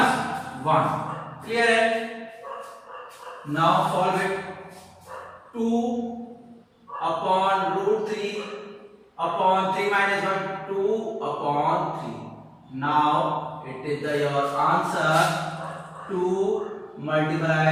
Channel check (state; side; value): identical; both; correlation 1.00